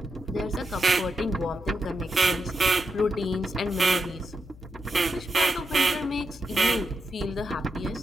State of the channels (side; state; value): left; noise; hum, 19 dB below the sound